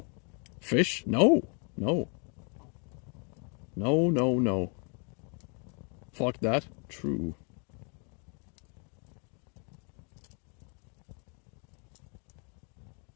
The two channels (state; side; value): quieter; right; 37.5 dB